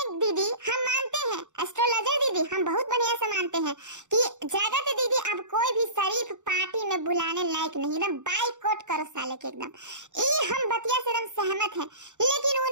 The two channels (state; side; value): late; left; 0.85 ms